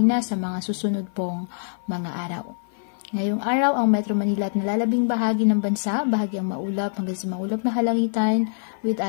sa mga susunod pong mga araw. Ngayong araw, ang Metro Manila at nalalabing bahagi ng bansa, bahagyang maulap hanggang sa maulap na halangitan with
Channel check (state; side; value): silent; right; 56 dB below the other